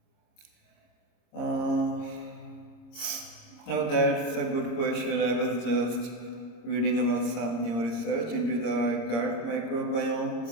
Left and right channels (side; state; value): right; late; 26 ms